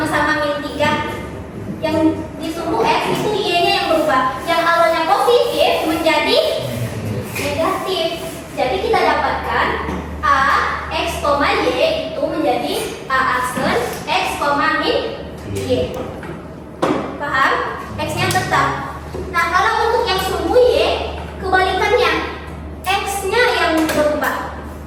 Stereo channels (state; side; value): identical; both; correlation 1.00